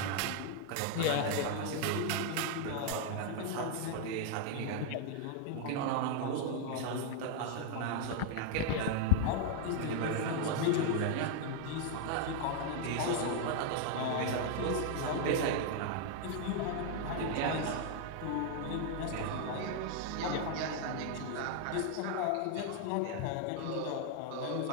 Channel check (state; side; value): different; both; correlation 0.00